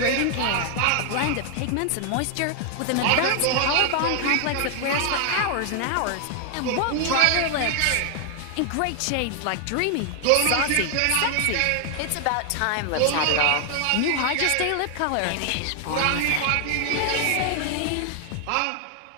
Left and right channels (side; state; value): both; different; correlation 0.00